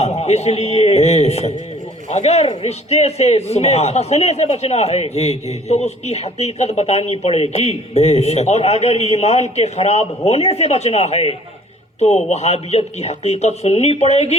اس لیے اگر رشتے سے میں پھنسنے سے بچنا ہے تو اس کی حقیقت بتانی پڑے گی, اور اگر ایمان کے خراب ہونے سے بچنا ہے تو وہابیت کی حقیقت سننی پڑے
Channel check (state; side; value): normal; both; correlation 0.53